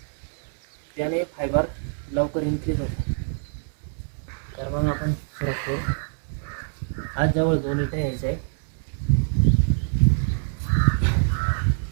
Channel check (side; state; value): left; silent; digital silence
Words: त्याने फायबर लवकर इन्क्रीज होतो. तर मग आपण सुरुवात करू. आज जवळ 2 विटा यायचं आहे.